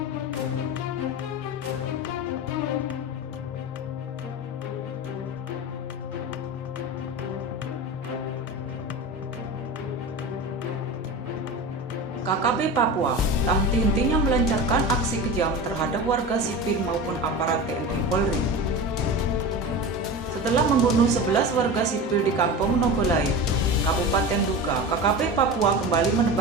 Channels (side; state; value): both; normal; correlation 0.28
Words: KKP Papua tak henti-hentinya melancarkan aksi kejam terhadap warga sipil maupun aparat TNI Polri. Setelah membunuh 11 warga sipil di Kampung Nogolait, Kabupaten Duga, KKP Papua kembali